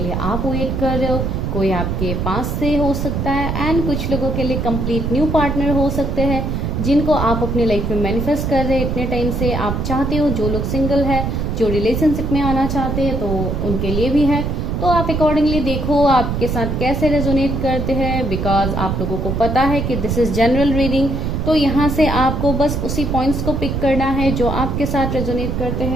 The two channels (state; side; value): noise; right; rumble, 1 dB below the sound